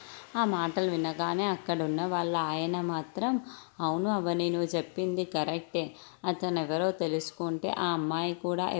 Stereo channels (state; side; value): silent; right; 57 dB below the other